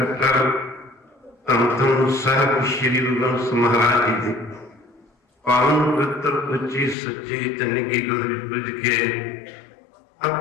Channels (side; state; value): right; drops out; at 7.0 s